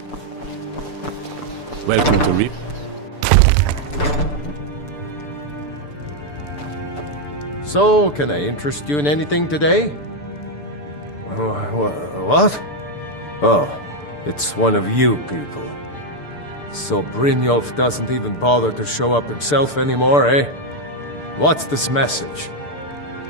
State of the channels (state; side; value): late; right; 6.8 ms